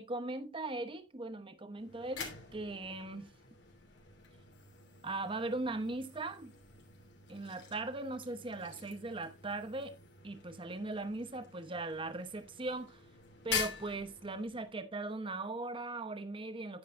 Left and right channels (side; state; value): both; normal; correlation 0.33